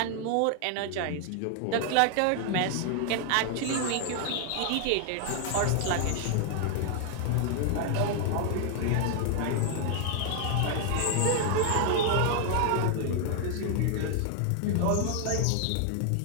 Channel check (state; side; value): different; both; correlation 0.00